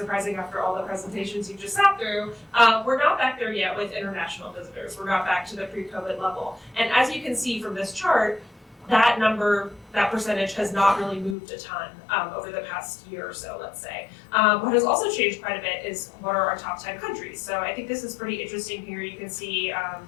after all the presentations you just sat through. We're not back there yet with international visitors. We're not back to the pre-COVID level. And as you can see from this chart, that number, that percentage has not really moved a ton over the past year or so, let's say. What has also changed quite a bit is what are our top 10 countries. So I think this is pretty interesting here. You can see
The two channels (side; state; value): right; drops out; at 11.4 s